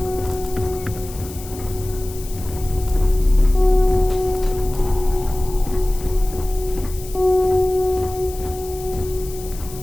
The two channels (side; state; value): left; noise; hiss, 16 dB below the sound